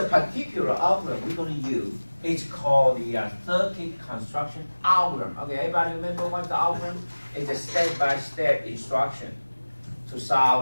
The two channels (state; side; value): inverted; both; correlation -1.00